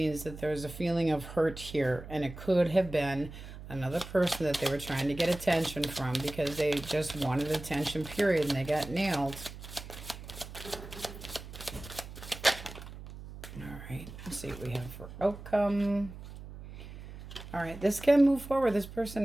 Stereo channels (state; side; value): noise; right; hum, 13 dB below the sound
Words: that there's a feeling of hurt here. And it could have been another person that they were trying to get attention from because they just wanted attention, period. And they got nailed. All right. Let's see what we have for outcome. All right. This can move forward. This